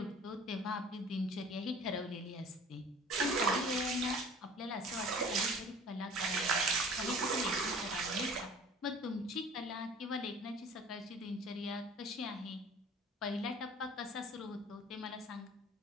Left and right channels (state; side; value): normal; both; correlation 0.46